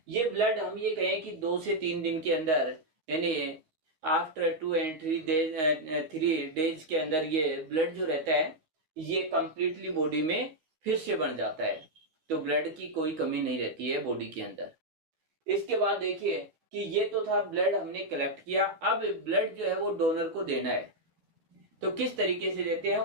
ये ब्लड हम ये कहें कि 2 से 3 दिन के अंदर, यानी आफ्टर 2 and 3 डेज के अंदर ये ब्लड जो रहता है ये कंप्लीटली बॉडी में फिर से बन जाता है। तो ब्लड की कोई कमी नहीं रहती है बॉडी के अंदर। इसके बाद देखिए कि ये तो था ब्लड हमने कलेक्ट किया, अब ब्लड जो है वो डोनर को देना है। तो किस तरीके से देते हैं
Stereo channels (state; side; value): late; left; 13 ms